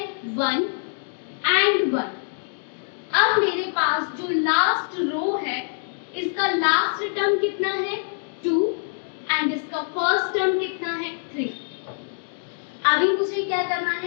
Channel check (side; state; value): right; silent; digital silence